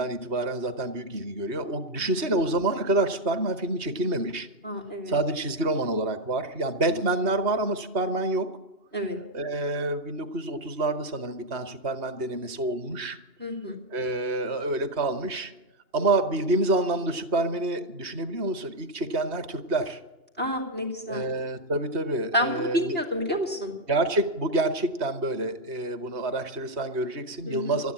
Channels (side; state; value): left; late; 2.8 ms